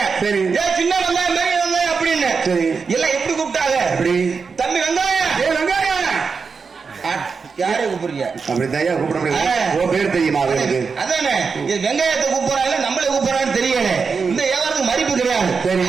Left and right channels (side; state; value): left; quieter; 5.2 dB